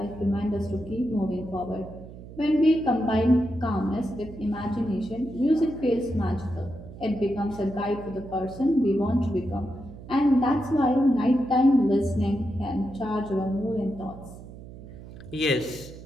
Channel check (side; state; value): right; noise; hum, 15 dB below the sound